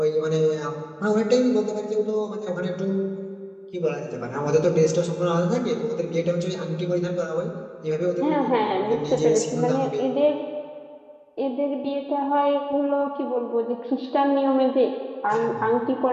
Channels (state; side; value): identical; both; correlation 1.00